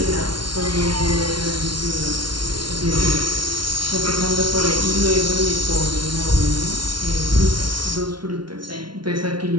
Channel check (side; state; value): left; late; 0.72 ms